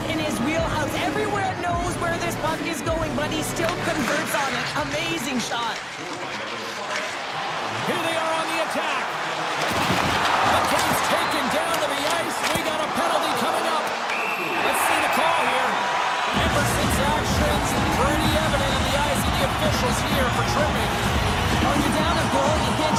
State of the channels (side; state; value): both; identical; correlation 1.00